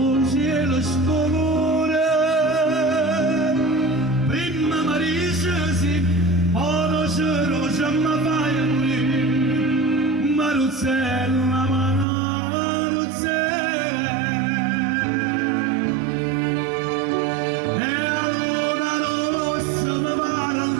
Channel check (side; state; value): left; drops out; at 12.1 s